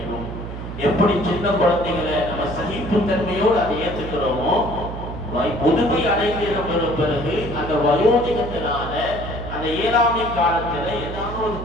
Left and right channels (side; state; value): right; noise; hum, 8 dB below the sound